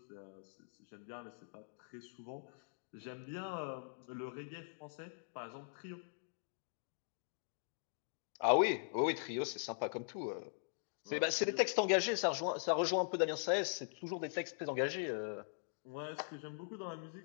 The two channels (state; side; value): silent; right; digital silence